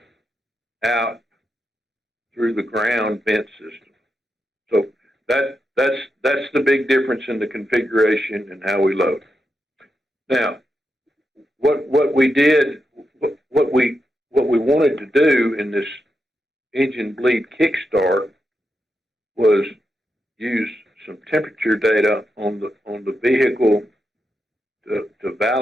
out through the ground vent system. So that's the big difference in the configuration and how we load. Now, what we wanted to do in this engine bleed Kickstart was use some temperature data on the vehicle to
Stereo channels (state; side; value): normal; both; correlation 0.86